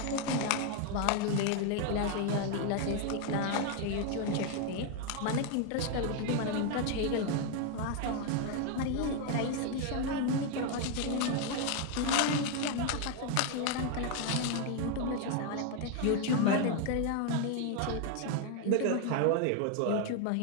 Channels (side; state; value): both; different; correlation 0.01